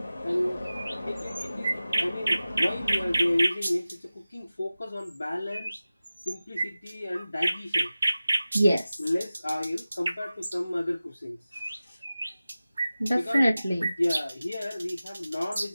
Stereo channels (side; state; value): both; inverted; correlation -0.96